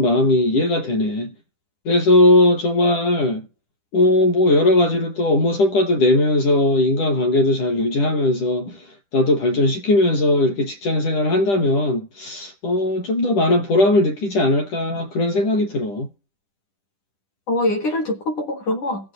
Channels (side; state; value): right; late; 10 ms